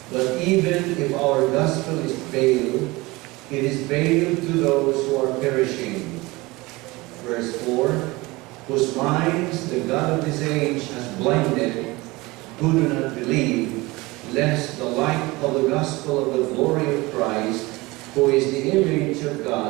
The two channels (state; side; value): quieter; left; 22.1 dB